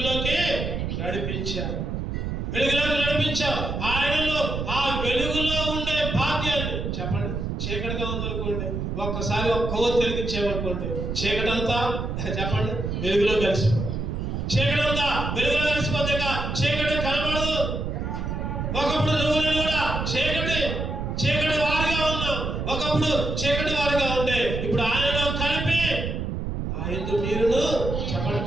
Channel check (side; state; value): right; noise; rumble, 3 dB below the sound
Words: నడిపించా. ఆయనలో ఆ వెలుగులో ఉండే భాగ్యాన్ని. చెప్పండి, చీకటిగా ఉందనుకోండి, ఒక్కసారి ఒక కొవ్వు వెలిగించామనుకోండి, చీకటంతా చెప్పండి వెలుగులో కలిసిపోతుంది. చీకటంతా వెలుగులో కలిసిపోతే చీకటి కనబడదు. ఒకప్పుడు నువ్వు నేను కూడా చీకటి వారిగా ఉన్నాం. ఒకప్పుడు చీకటి వారిగా ఉంటే ఇప్పుడు ఆయనలో కలిపి నా యందు మీరును. చెప్పండి,